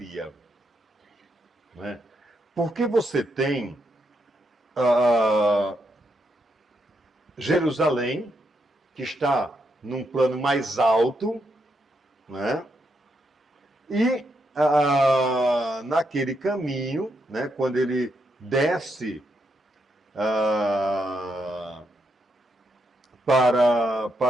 Né? Porque você tem Jerusalém, que está num plano mais alto, né? E naquele caminho, né, quando ele desce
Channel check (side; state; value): both; normal; correlation 0.80